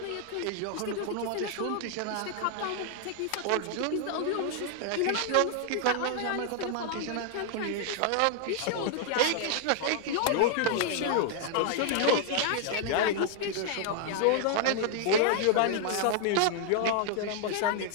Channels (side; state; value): both; different; correlation 0.00